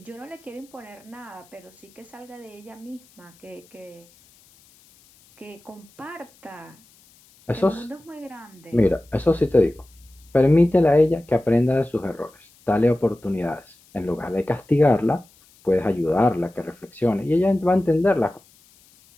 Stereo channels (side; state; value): left; noise; hiss, 29 dB below the sound